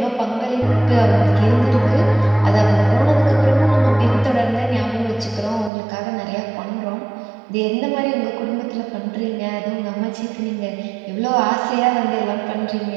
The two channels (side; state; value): left; drops out; at 5.7 s